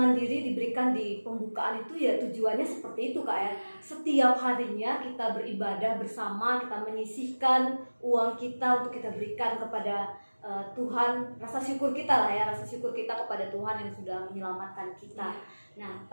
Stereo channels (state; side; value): inverted; both; correlation -1.00